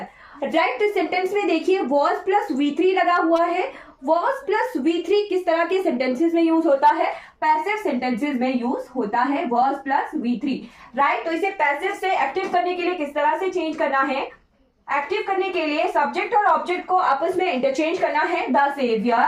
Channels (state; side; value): identical; both; correlation 1.00